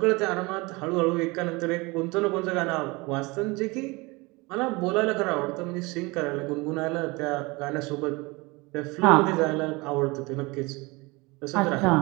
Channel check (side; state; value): left; quieter; 24.8 dB